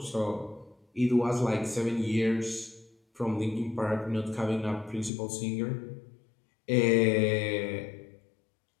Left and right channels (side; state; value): right; drops out; at 5.1 s